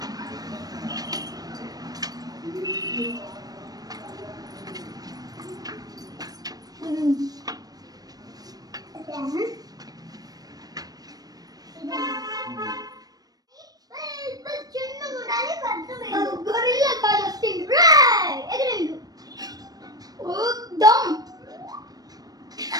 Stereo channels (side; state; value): left; late; 0.19 ms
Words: గొరిల్లా కాదు వస్తుంది. ఎగరండు దమ్